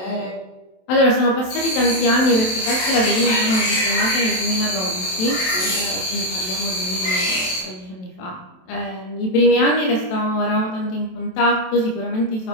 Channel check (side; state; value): right; late; 27 ms